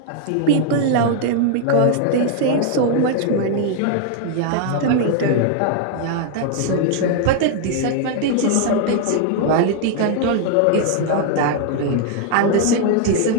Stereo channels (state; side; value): different; both; correlation 0.00